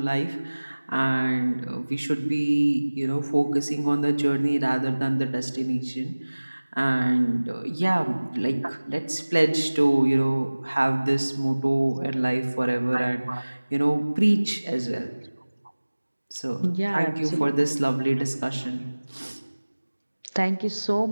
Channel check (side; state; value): both; inverted; correlation -1.00